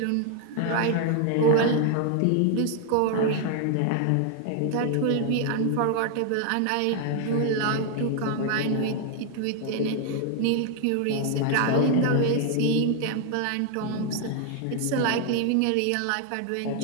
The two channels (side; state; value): both; different; correlation 0.00